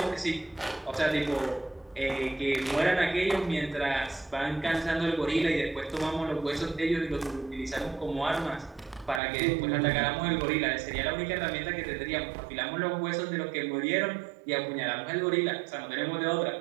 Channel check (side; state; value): left; drops out; at 9.2 s